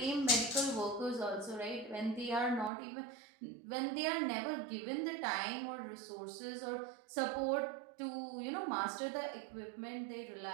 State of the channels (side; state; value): left; drops out; at 2.7 s